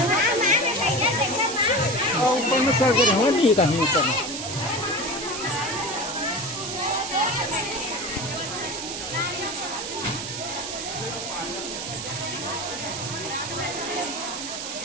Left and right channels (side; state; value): right; noise; hiss, 6 dB below the sound